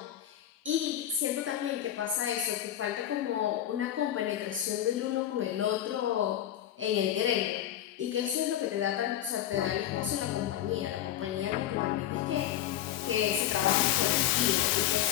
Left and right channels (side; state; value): right; quieter; 11.7 dB